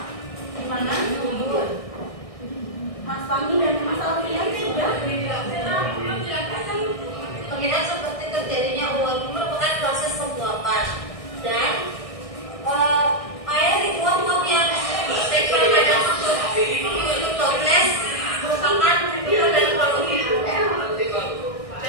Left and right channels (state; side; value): late; right; 1.6 ms